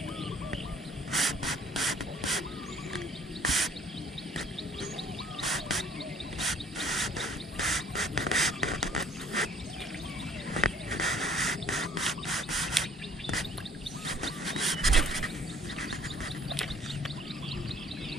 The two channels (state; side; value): normal; both; correlation 0.56